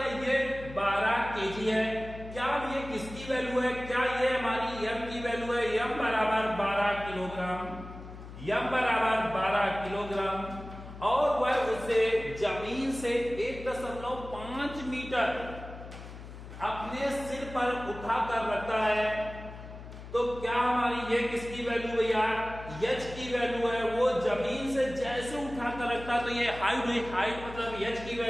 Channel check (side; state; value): left; noise; hum, 13 dB below the sound